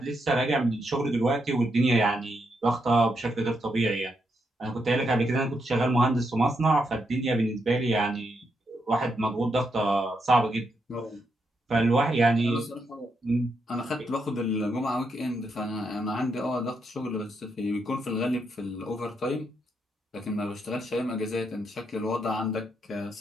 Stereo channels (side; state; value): both; normal; correlation 0.81